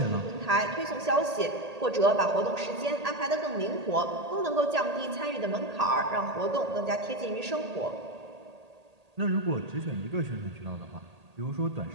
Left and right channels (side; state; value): left; late; 1.8 ms